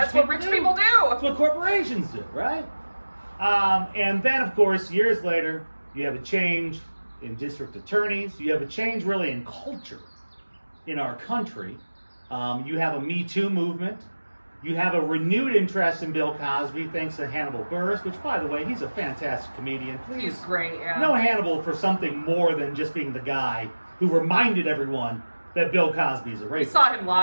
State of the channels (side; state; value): both; inverted; correlation -1.00